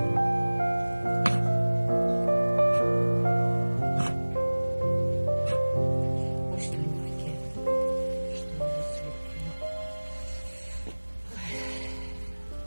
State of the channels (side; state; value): both; inverted; correlation -1.00